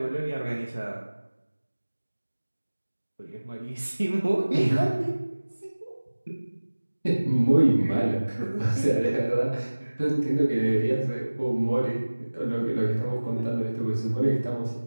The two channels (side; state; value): both; inverted; correlation -1.00